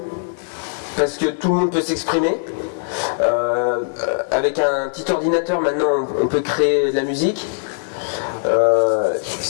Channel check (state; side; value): silent; right; digital silence